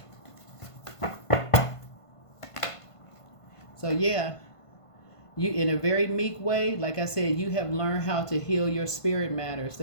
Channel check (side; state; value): right; late; 1.5 ms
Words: So yeah, You, in a very meek way, like I said, you have learned how to heal your spirit matters.